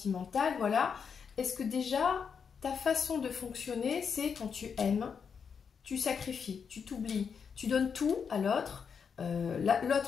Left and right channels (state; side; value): quieter; right; 6.5 dB